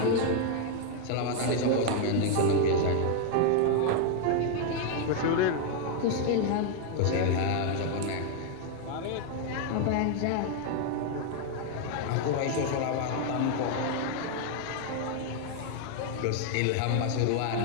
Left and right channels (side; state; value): both; different; correlation 0.01